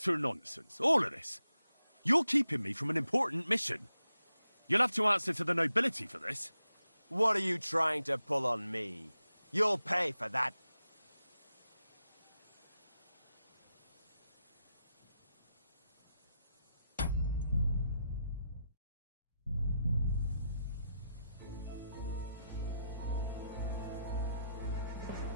nonsense, all of this. You're keeping me from an important mission. You'll have to answer to the nobility for this. What are you trying to pull on me? You'll pay for that.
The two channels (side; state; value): both; inverted; correlation -0.86